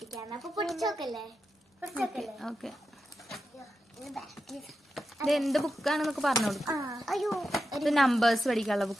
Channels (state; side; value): normal; both; correlation 0.89